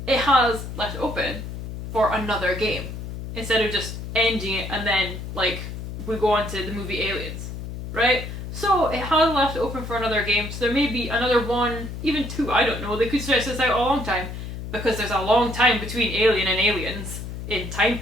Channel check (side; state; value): left; noise; hum, 8 dB below the sound